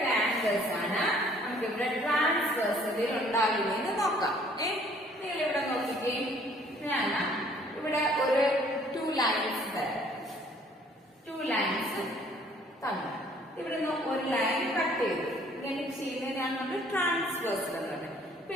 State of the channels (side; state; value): both; normal; correlation 0.59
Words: angles ആണ് നമുക്ക് ഇവിടെ ട്രാൻസ്വേഴ്സലിൽ ഉണ്ടാകുന്നതെന്ന് നോക്കാം. നിങ്ങൾ ഇവിടെ നോക്കിക്കേ. ഞാൻ ഇവിടെ ഒരു 2 ലൈൻസ് തരാം. 2 ലൈൻസ് തന്നു. ഇവിടുന്ന് ഒരു ലൈൻ കട്ട് ചെയ്തു. ഇങ്ങനെ ചെയ്യുന്നതിനാണ് നമ്മൾ ട്രാൻസ്വേഴ്സൽ എന്നുള്ളത്. ഇപ്പൊ